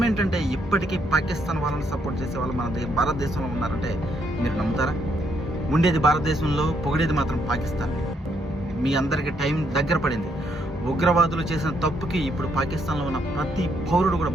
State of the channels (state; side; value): normal; both; correlation 0.74